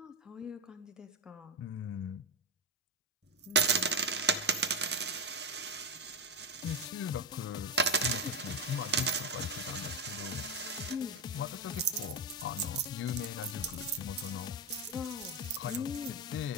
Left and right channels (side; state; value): both; normal; correlation 0.11